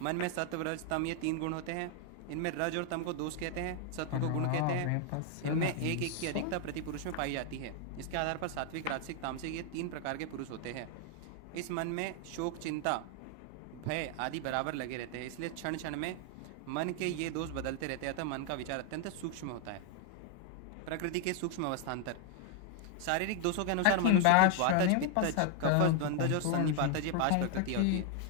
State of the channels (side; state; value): both; different; correlation 0.00